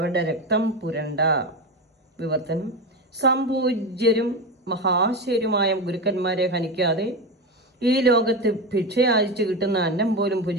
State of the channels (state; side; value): normal; both; correlation 0.19